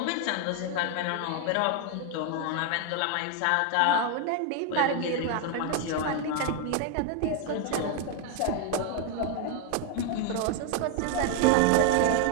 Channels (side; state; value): both; different; correlation 0.01